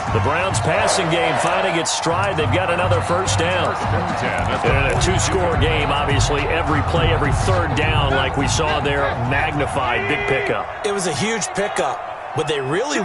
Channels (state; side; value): identical; both; correlation 1.00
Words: The Browns passing game finding its stride. They've got another first down. And a two-score game, obviously, every play, every third down, like we saw there, magnified, big pickup. It was a huge pickup. What they really